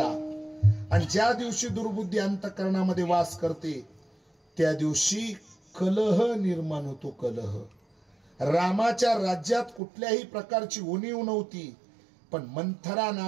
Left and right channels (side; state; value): left; drops out; at 9.8 s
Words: आणि ज्या दिवशी दुर्बुद्धी अंतकरणामध्ये वास करते त्या दिवशी कलह निर्माण होतो। कलह रामाच्या राज्यात कुठल्याही प्रकारची उणीव नव्हती, पण मंथरा